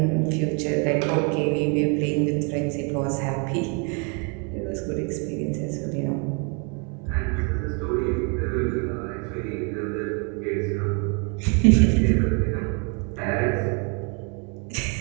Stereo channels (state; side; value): quieter; left; 35.8 dB